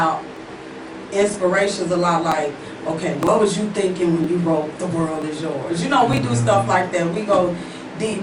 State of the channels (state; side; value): identical; both; correlation 1.00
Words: inspirations a lot. Like, okay, what was you thinking when you wrote "The World Is Yours"? You know, we do stuff like that. We go deep.